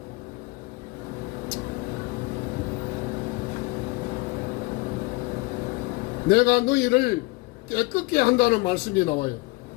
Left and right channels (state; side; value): quieter; right; 23.6 dB